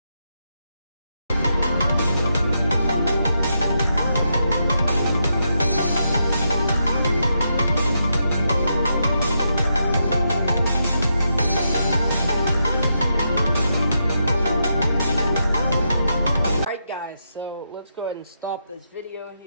So let's go ahead and stop this video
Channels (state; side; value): inverted; both; correlation -0.82